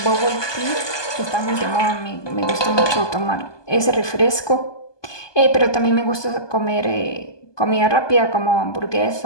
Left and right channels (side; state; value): right; late; 1.2 ms